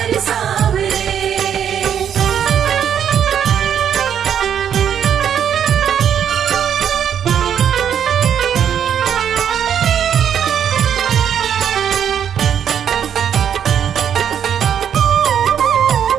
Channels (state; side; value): quieter; left; 8.8 dB